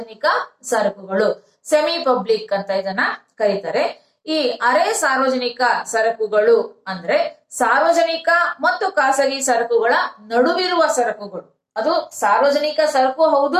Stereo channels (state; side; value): identical; both; correlation 1.00